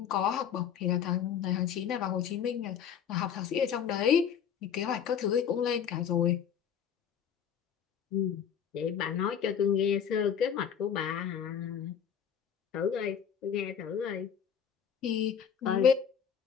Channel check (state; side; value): quieter; right; 8.2 dB